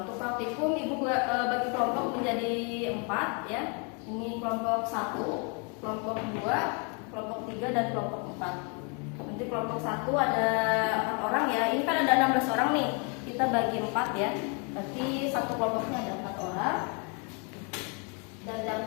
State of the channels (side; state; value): right; quieter; 35.9 dB